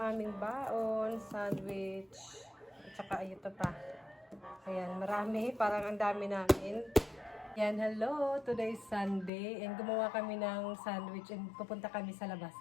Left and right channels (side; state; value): right; drops out; at 9.3 s